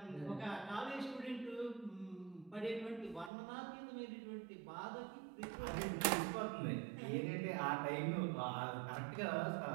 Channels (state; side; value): drops out; left; at 3.3 s